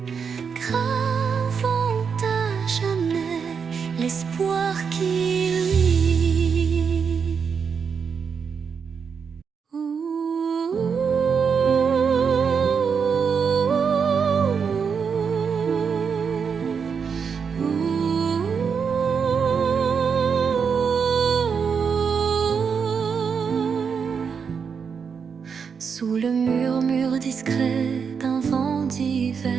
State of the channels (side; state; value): left; quieter; 6.3 dB